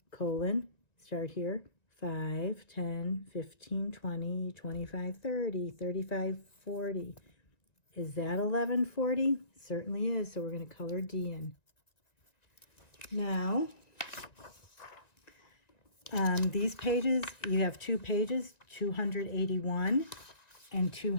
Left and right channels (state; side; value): late; right; 1.9 ms